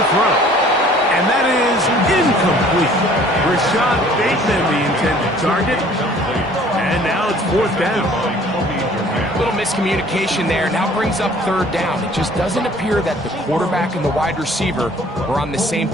throw. And that is incomplete. Rashad Bateman, the intended target. And now it's 4th down. A little miscommunication there. Now brings up 3rd down. It just doesn't appear that the quarterback and the wide receiver were on the same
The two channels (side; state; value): both; normal; correlation 0.53